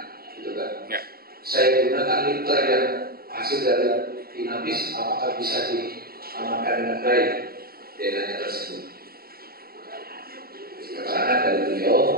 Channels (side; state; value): left; late; 0.44 ms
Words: gitu kan. Ya. Saya gunakan liter yang hasil dari inavis, apakah bisa diamankan dengan baik DNA tersebut? Karena dari